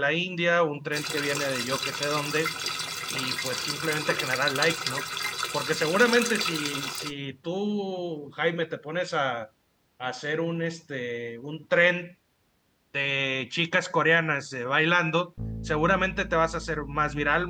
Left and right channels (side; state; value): both; identical; correlation 1.00